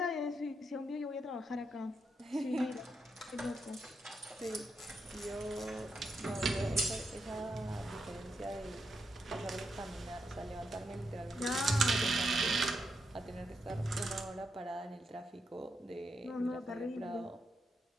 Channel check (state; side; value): normal; both; correlation 0.83